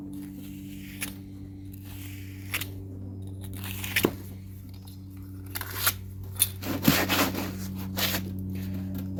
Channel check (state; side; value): identical; both; correlation 1.00